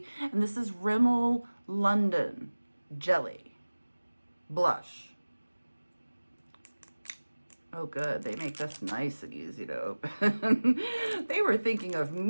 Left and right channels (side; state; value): both; inverted; correlation -1.00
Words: this is Rimmel London Jelly Blush. Oh good, they make this nice and easy to open. They were thinking of